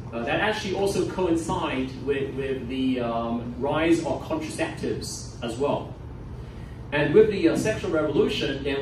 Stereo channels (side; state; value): both; identical; correlation 1.00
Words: That actually also coincided with the rise of contraceptives as well. And with the sexual revolution,